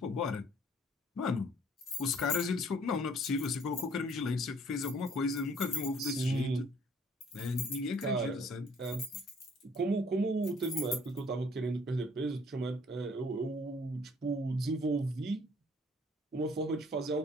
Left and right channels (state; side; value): normal; both; correlation 0.59